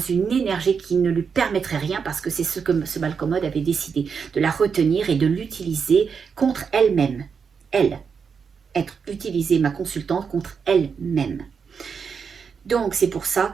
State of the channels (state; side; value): quieter; left; 6.1 dB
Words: énergie qui ne lui permettrait rien, parce que c'est ce que ce Malcommode avait décidé, de la retenir et de l'utiliser contre elle-même. Elle. Être utilisée, ma consultante, contre elle-même. Donc c'est pour ça